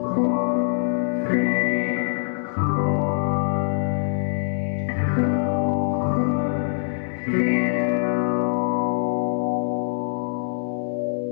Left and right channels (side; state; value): right; silent; digital silence